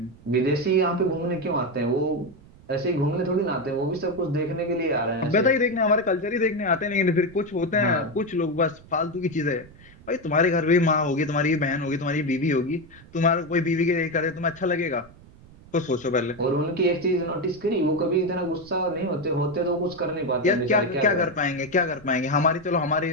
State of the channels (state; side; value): noise; right; rumble, 23 dB below the sound